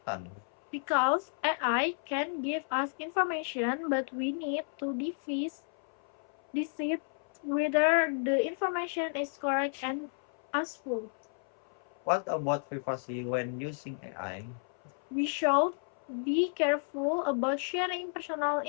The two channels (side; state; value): right; silent; 56 dB below the other